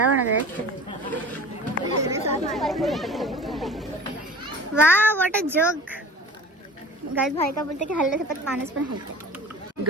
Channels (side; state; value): both; normal; correlation 0.41